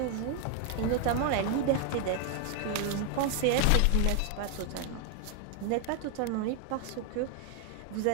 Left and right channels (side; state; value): both; different; correlation 0.01